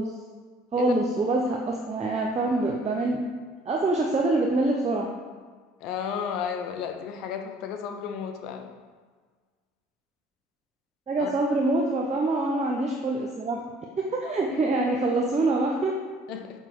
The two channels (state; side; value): normal; both; correlation 0.58